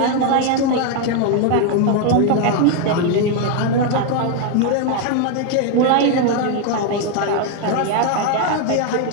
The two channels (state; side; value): different; both; correlation 0.01